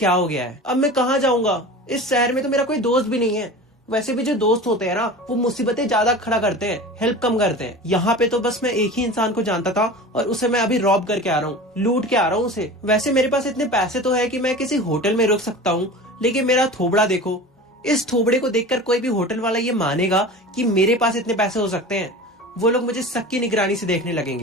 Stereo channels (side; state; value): both; normal; correlation 0.35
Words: हो गया है। अब मैं कहाँ जाऊंगा? इस शहर में तो मेरा कोई दोस्त भी नहीं है। वैसे भी जो दोस्त होते हैं ना वो मुसीबतें ज्यादा खड़ा करते हैं, हेल्प कम करते हैं। यहाँ पे तो बस मैं एक ही इंसान को जानता था, और उसे मैं अभी रॉब करके आ रहा हूँ, लूट के आ रहा हूँ उसे। वैसे मेरे पास इतने पैसे तो है कि मैं किसी होटल में रुक सकता हूँ, लेकिन मेरा थोबड़ा देखो। इस थोबड़े को देखकर कोई भी होटल वाला ये मानेगा कि मेरे पास इतने पैसे हो सकते हैं? वो लोग मुझे शक की निगरानी से देखने